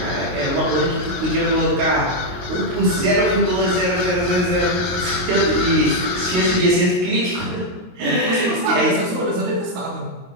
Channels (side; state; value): left; late; 22 ms